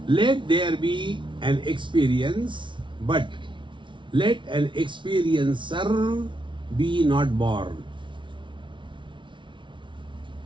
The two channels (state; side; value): late; left; 0.24 ms